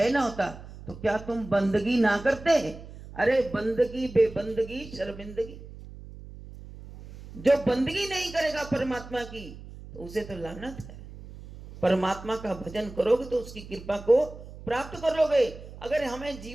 ना होता, तो क्या तुम बंदगी ना करते? अरे बंदगी बेबंदगी शर्मिंदगी, जो बंदगी नहीं करेगा परमात्मा की तो उसे तो लानत है। परमात्मा का भजन करोगे तो उसकी कृपा को प्राप्त करोगे। अगर हमें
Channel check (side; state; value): right; noise; hum, 15 dB below the sound